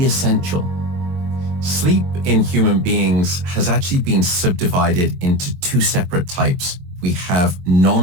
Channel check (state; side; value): late; left; 22 ms